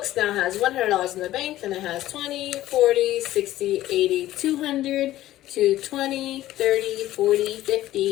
now has $100 in the bank, then it has 20, 40, 60, 80, 200, 220, 30, 40,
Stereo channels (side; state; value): right; quieter; 14.6 dB